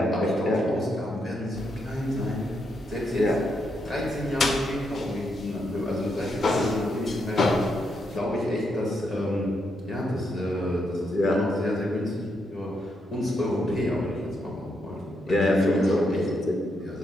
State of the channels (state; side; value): normal; both; correlation 0.80